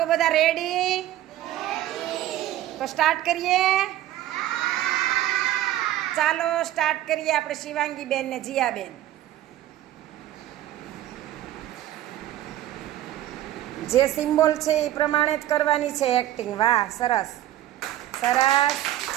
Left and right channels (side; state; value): left; quieter; 13.7 dB